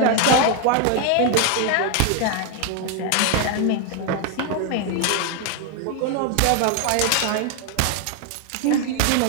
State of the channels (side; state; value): both; different; correlation 0.01